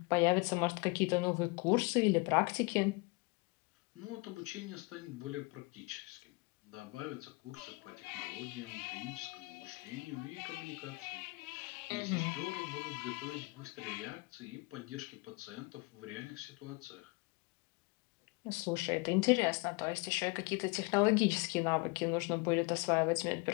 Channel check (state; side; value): quieter; right; 27.0 dB